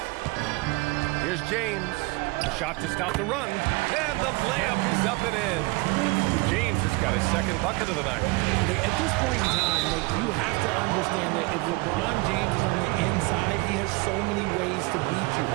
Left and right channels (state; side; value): quieter; left; 24.7 dB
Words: Here's James. Shot to stop the run. And the layup is up and in. James has got his second bucket of the night. At this point in time, you have to understand that if LeBron James is on the inside, he has so many ways to beat you.